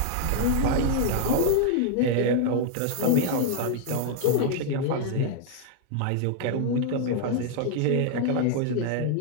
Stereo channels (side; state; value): both; different; correlation 0.00